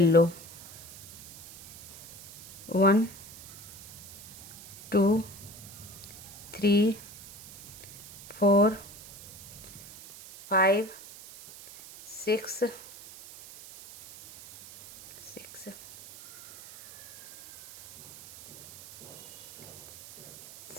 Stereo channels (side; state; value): right; noise; hiss, 16 dB below the sound